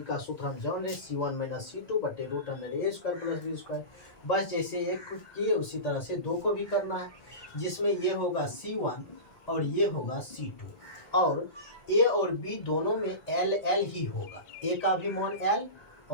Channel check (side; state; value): right; late; 1.8 ms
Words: का सूत्र हम जान रहे C1 माइनस C2 बटे रूट अंडर ए स्क्वायर प्लस बी स्क्वायर। बस जैसे एक को किए उसी तरह से दो को भी करना है, जिसमें ये होगा C1 और ये होगा C2 और a और b दोनों में L L ही होगा, a का भी मान L